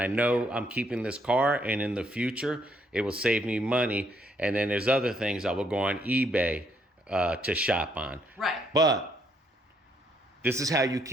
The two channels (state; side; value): normal; both; correlation 0.71